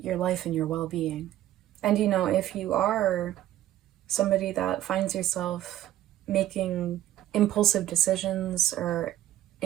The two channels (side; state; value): left; quieter; 13.4 dB